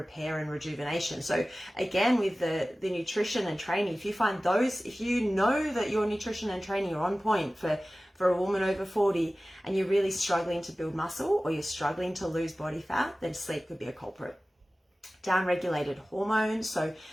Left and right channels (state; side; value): normal; both; correlation 0.97